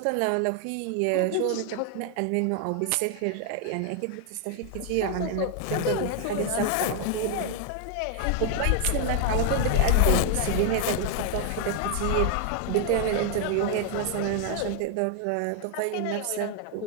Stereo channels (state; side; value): different; both; correlation 0.00